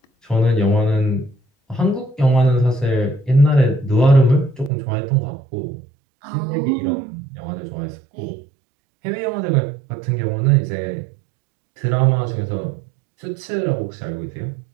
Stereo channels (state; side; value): drops out; left; at 4.7 s